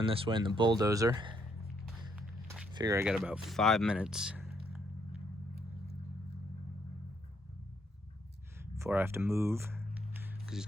this way in the bulldozer. Figure I got about 5 minutes before I have to move, because he's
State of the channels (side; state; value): both; normal; correlation 0.73